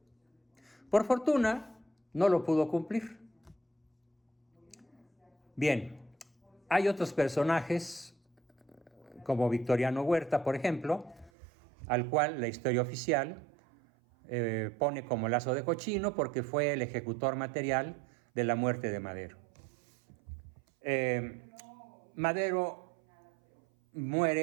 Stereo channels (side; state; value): left; drops out; at 11.3 s